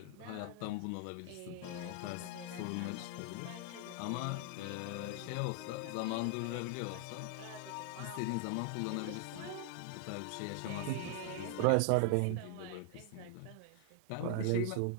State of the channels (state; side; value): different; both; correlation 0.00